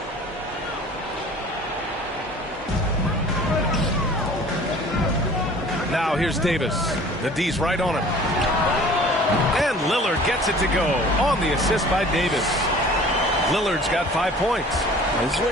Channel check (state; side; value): normal; both; correlation 0.47